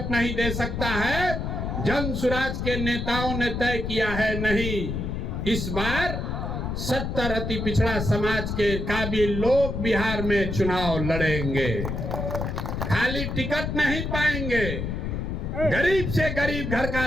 नहीं दे सकता है। जन सुराज के नेताओं ने तय किया है, नहीं, इस बार 70 अति पिछड़ा समाज के काबिल लोग बिहार में चुनाव लड़ेंगे। खाली टिकट नहीं पाएंगे। गरीब से गरीब घर का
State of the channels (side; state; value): left; noise; rumble, 3 dB below the sound